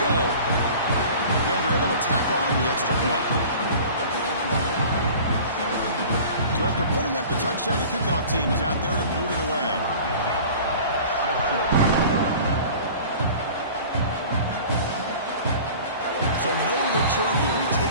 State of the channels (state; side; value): inverted; both; correlation -0.42